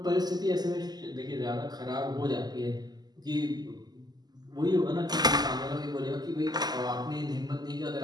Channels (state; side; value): late; left; 0.20 ms